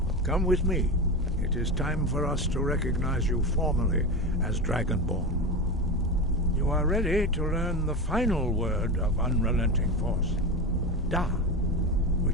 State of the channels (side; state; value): both; normal; correlation 0.21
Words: Come with me. It is time for us to recognize you formally as Dragonborn. You are ready to learn the final word of unrelenting force. Da,